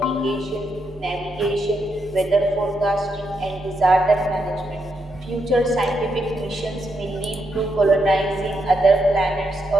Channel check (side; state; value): both; normal; correlation 0.81